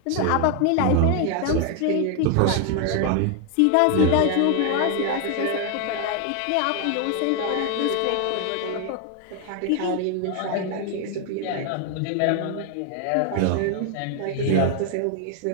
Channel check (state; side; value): different; both; correlation 0.01